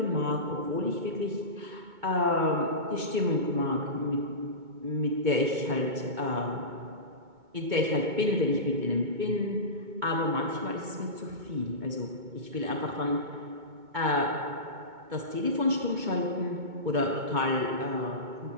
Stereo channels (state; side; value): late; left; 2.2 ms